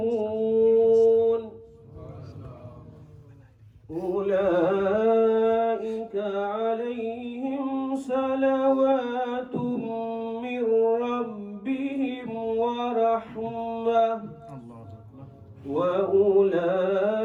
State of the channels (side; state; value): both; identical; correlation 1.00